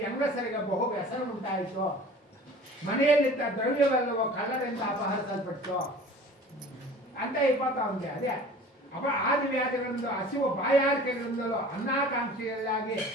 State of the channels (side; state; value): both; normal; correlation 0.44